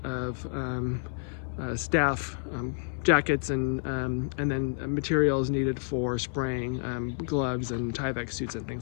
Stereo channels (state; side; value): silent; right; digital silence